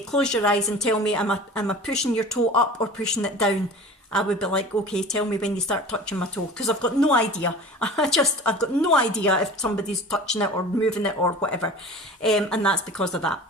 your eyes and tell me, am I pushing your toe up or pushing it down? I would be like, okay, tell me when you start touching my toe, because I've got no idea. I've got no idea if somebody's touching it or moving it or whatever. And that's because of that.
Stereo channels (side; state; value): both; normal; correlation 0.39